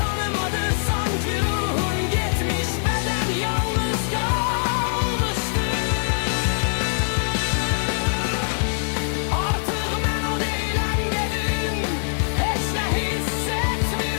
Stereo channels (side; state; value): right; silent; digital silence